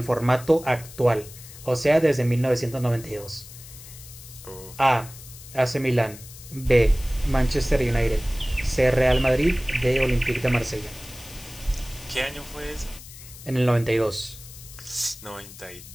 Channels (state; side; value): noise; left; hiss, 17 dB below the sound